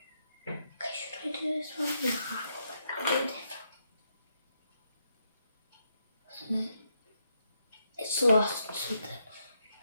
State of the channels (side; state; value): both; inverted; correlation -0.79